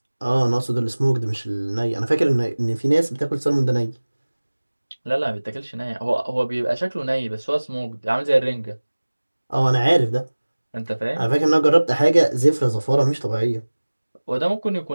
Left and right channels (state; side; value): inverted; both; correlation -1.00